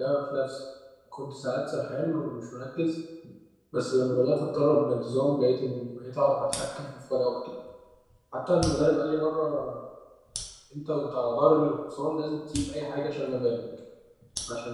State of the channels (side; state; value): both; identical; correlation 1.00